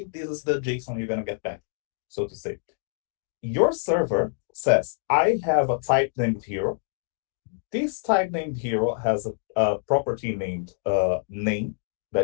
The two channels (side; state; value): right; silent; digital silence